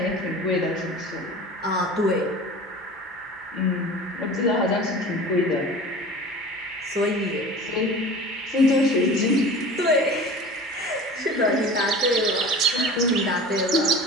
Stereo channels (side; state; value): both; normal; correlation 0.38